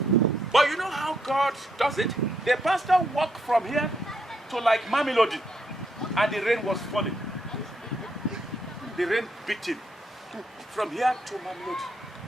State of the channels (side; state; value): both; normal; correlation 0.76